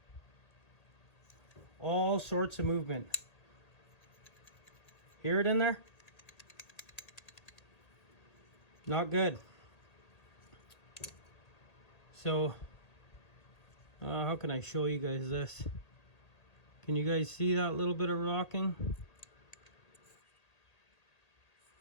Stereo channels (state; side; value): late; right; 1.8 ms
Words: All sorts of movement. Hear it in there? Not good. So, how can I show you guys this? Can you guys see that little bit of rocking?